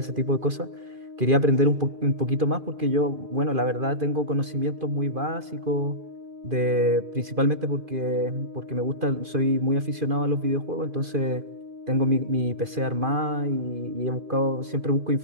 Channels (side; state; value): left; late; 2.5 ms